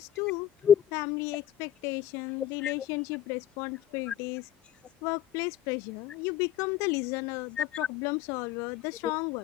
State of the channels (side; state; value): right; quieter; 11.5 dB